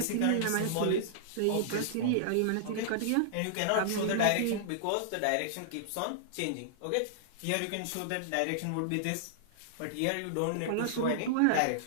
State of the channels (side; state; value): both; different; correlation -0.01